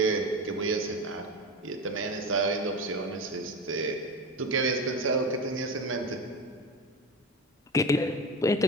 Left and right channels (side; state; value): both; normal; correlation 0.24